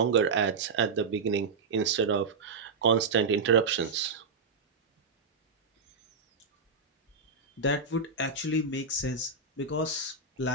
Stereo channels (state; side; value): quieter; left; 4.4 dB